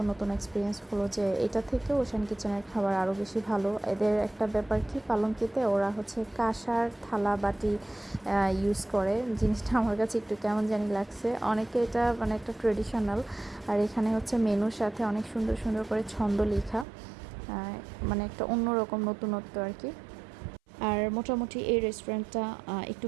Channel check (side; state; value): left; drops out; at 16.9 s